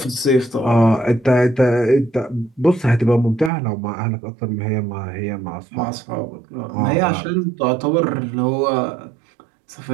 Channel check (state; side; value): drops out; left; at 3.5 s